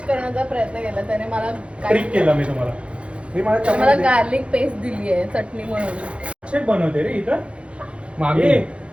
करण्याचा प्रयत्न केला त्याने मला ट्रिक केला मी तुम्हाला. हे मला मला चम्मच दे. गार्लिक पेस्ट दिली आहे चटणी म्हणून. शेफ बनवते रे इथं. मामी ए,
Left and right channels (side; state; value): left; late; 0.060 ms